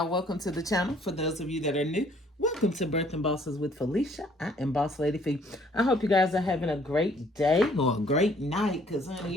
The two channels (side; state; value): both; normal; correlation 0.61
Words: welcome to the channel. For those of you that are new, welcome to Birthing Bosses with Felicia. I am Boss Lady Fee. I hope you guys are having a great day or a great night, because